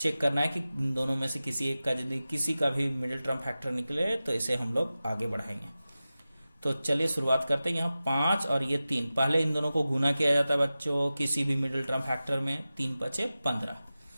करना है कि इन दोनों में से किसी एक का यदि किसी का भी मिडिल टर्म फैक्टर निकले तो इसे हम लोग आगे बढ़ाएंगे। तो चलिए शुरुआत करते हैं। यहाँ 5 और ये 3, पहले इन दोनों को गुना किया जाता है बच्चों किसी भी मिडिल टर्म फैक्टर में, 3 बचे 15।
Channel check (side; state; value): both; inverted; correlation -0.95